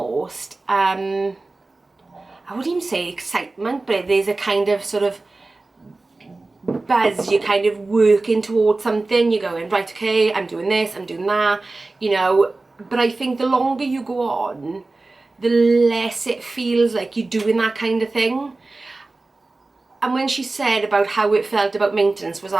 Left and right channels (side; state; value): left; quieter; 3.3 dB